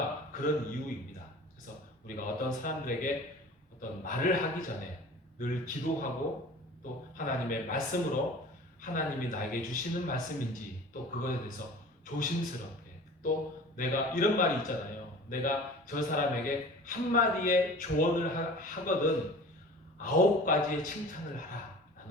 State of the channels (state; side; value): normal; both; correlation 0.41